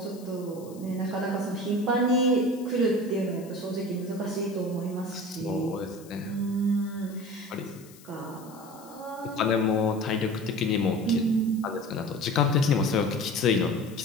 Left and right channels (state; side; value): noise; left; hiss, 23 dB below the sound